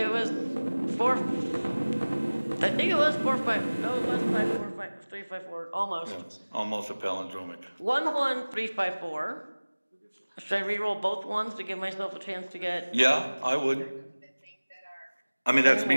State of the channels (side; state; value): both; inverted; correlation -1.00